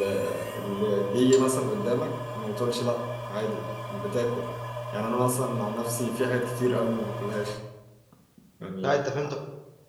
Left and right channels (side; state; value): both; identical; correlation 1.00